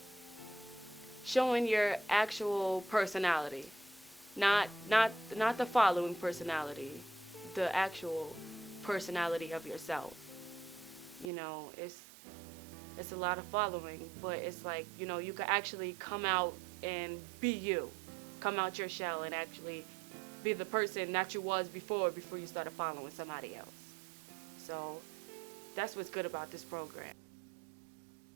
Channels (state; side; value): drops out; left; at 11.3 s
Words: Showing your actual personality, not the following personality, the actual personality of yourself. It's a lot of following, but it's like, you could actually come out and be you. Come out your shell and actually be the person that you was before you started following somebody else. So that's what's good about this program. To help, I will be